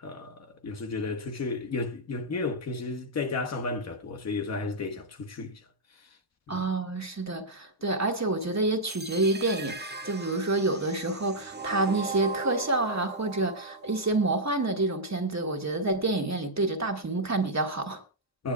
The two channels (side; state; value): both; normal; correlation -0.07